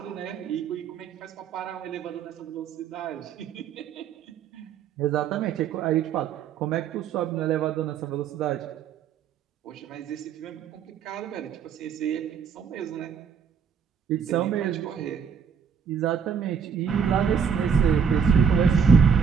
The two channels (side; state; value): left; quieter; 6.7 dB